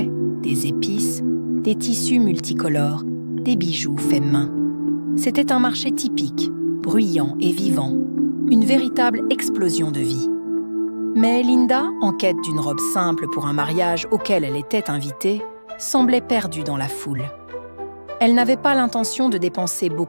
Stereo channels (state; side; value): inverted; both; correlation -1.00